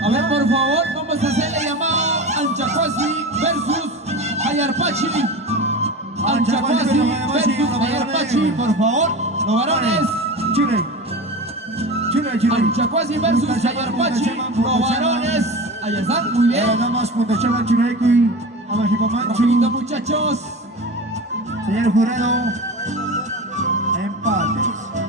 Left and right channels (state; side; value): normal; both; correlation 0.30